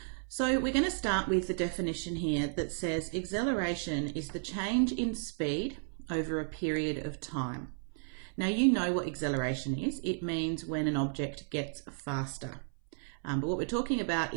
So we're going to start with the definition here that says acceleration is the change in speed over a period of time. Now you know what acceleration is. It means when an object gets faster. But what we're talking about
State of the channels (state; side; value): silent; left; 56 dB below the other